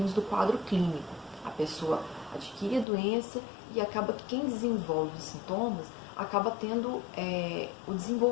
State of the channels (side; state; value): right; drops out; at 2.9 s